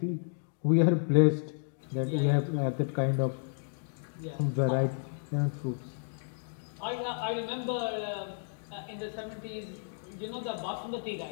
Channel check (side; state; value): right; silent; digital silence